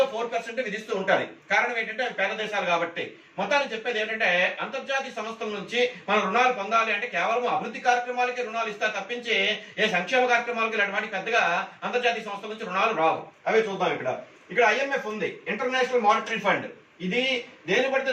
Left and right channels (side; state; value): both; identical; correlation 1.00